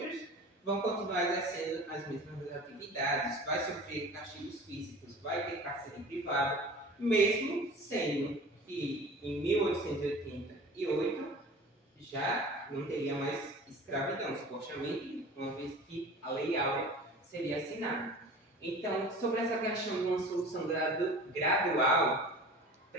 vão continuar exercendo as mesmas atividades, vai sofrer castigos físicos, vai ter cárcere privado, mesmo sendo que em 1888 já não teria mais escravidão, supostamente, uma vez que a Lei Áurea seria assinada. Então, sobre essa questão de uma solução gradual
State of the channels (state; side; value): normal; both; correlation 0.40